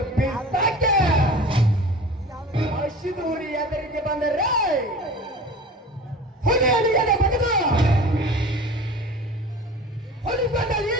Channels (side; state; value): both; normal; correlation 0.39